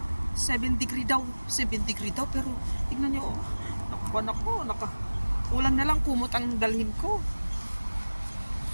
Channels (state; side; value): inverted; both; correlation -1.00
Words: 7 degree daw pero tingnan niyo ulang na lang kumot ang dalhin ko.